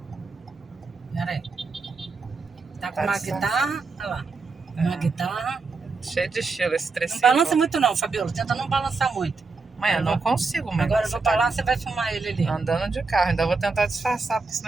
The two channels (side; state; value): left; quieter; 4.2 dB